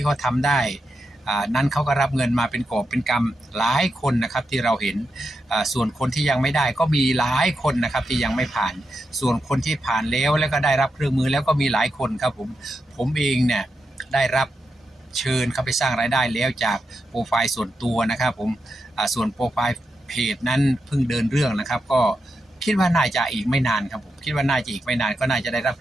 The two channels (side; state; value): both; normal; correlation 0.86